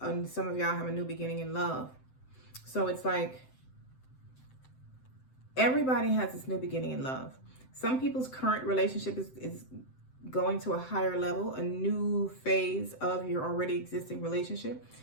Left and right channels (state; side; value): late; right; 7.8 ms